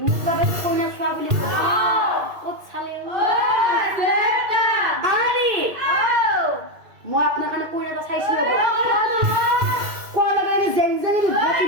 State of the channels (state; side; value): late; left; 2.5 ms